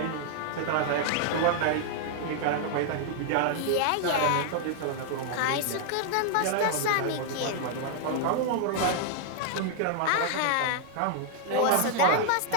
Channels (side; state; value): both; different; correlation -0.01